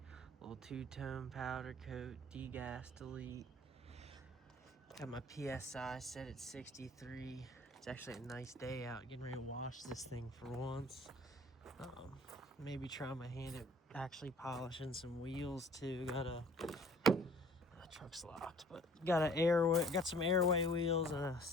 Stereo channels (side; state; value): both; normal; correlation 0.52